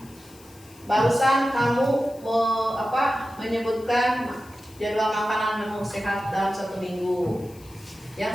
Barusan kamu menyebutkan jadwal makanan menu sehat dalam 1 minggu. Yang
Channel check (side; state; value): left; noise; hiss, 24 dB below the sound